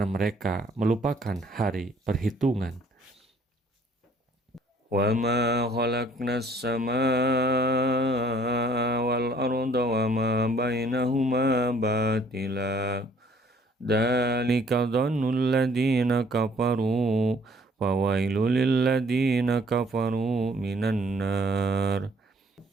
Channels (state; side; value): normal; both; correlation 0.60